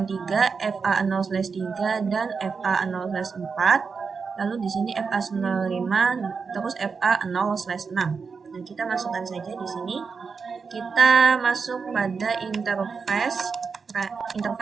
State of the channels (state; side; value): quieter; left; 5.2 dB